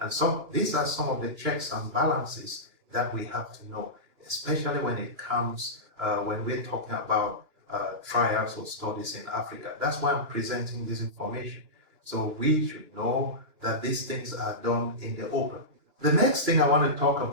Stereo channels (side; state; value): left; late; 2.9 ms